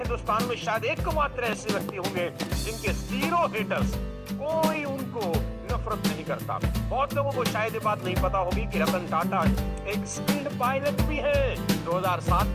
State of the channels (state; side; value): identical; both; correlation 1.00